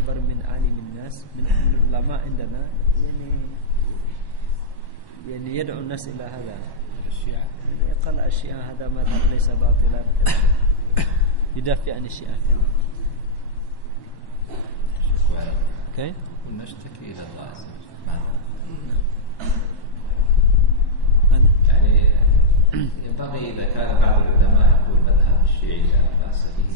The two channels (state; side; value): late; right; 1.1 ms